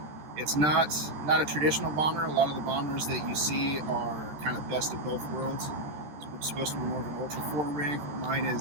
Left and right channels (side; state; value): left; late; 13 ms